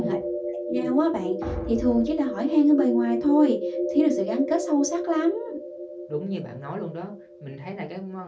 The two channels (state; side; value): identical; both; correlation 1.00